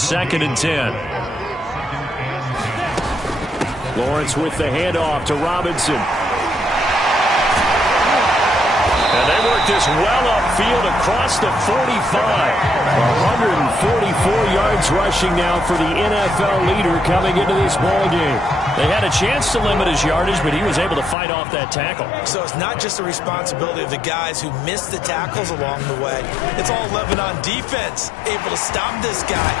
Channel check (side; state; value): right; drops out; at 21.2 s